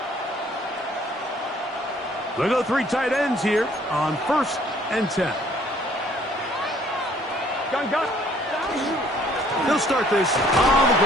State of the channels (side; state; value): both; normal; correlation 0.60